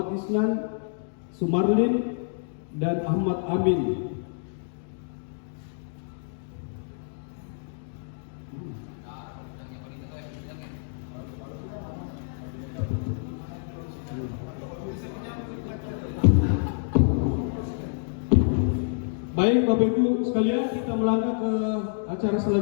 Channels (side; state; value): right; silent; digital silence